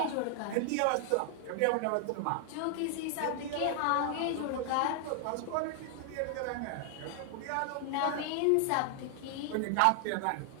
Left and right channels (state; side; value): different; both; correlation 0.00